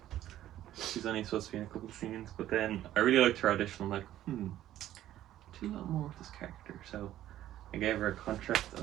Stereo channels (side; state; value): left; quieter; 13.0 dB